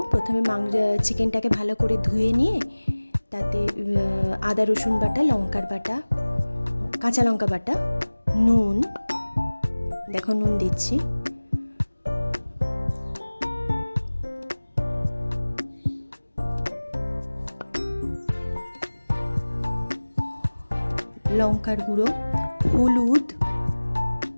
প্রথমে চিকেনটাকে ভালো করে ধুয়ে নিয়ে তাতে আদা রসুন বাটা, লঙ্কার বাটা, কাঁচা লঙ্কা বাটা, নুন, দেখো নুন দিচ্ছি, লঙ্কার গুঁড়ো, হলুদ,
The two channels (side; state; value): both; inverted; correlation -1.00